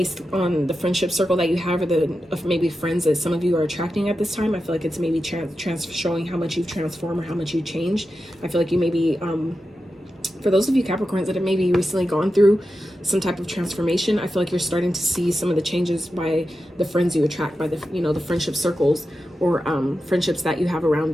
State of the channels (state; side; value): normal; both; correlation 0.90